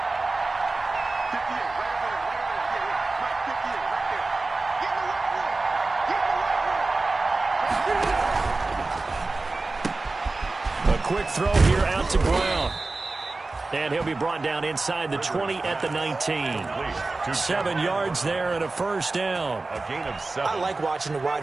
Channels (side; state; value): left; quieter; 3.4 dB